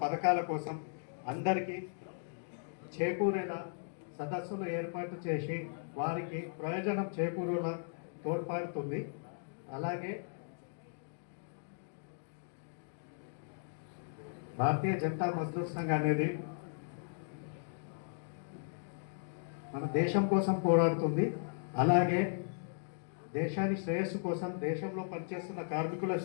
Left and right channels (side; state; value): right; silent; digital silence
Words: పథకాల కోసం అందరికీ చేకూరేలా సదస్సులు ఏర్పాటు చేసి వారికి ప్రయోజనం చేకూరేలా తోడ్పడుతుంది. అలాగే భారతీయ జనతా మజ్దూర్ సంఘ్ అనేది మన దేశం కోసం పోరాడుతుంది. అలాగే దేశాన్ని శ్రేయస్సు కోసం, దేశంలో పనిచేస్తున్న కార్మికుల